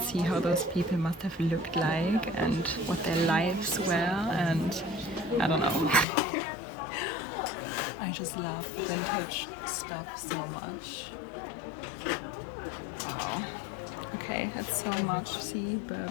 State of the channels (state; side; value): drops out; right; at 6.1 s